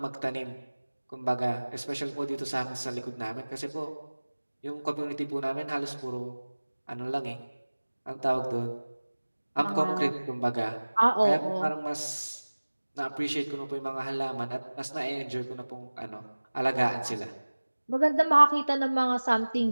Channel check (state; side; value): inverted; both; correlation -1.00